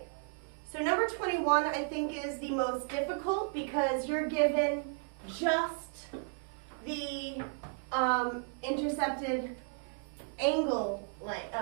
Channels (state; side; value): silent; left; 55 dB below the other